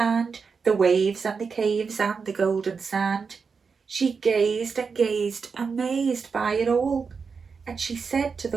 the waves and the caves and the golden sand. She gazed and gazed, amazed by it all, and she said to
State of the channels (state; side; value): quieter; left; 5.3 dB